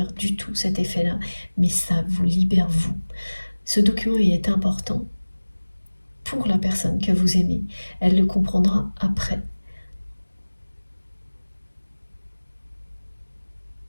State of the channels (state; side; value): inverted; both; correlation -1.00